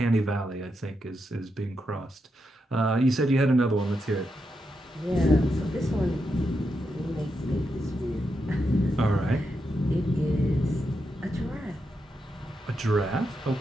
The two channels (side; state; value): both; normal; correlation 0.85